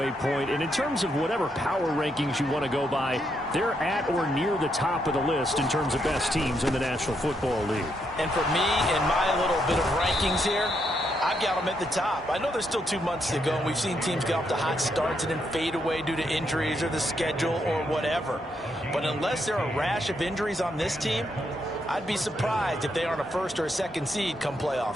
point. And in terms of whatever power rankings you want to go by, they're at or near the top of the list in terms of best teams in the National Football League. And for me, in my little bit of rankings here, I've got them at the top. I know there's still 2 months to go, and we've seen teams get off to hot starts and then fade away due to injuries or the schedule or whatever. But unless there are a rash of injuries on this team, I'd be surprised if they aren't a 1st or a 2nd seed come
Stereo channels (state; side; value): normal; both; correlation 0.78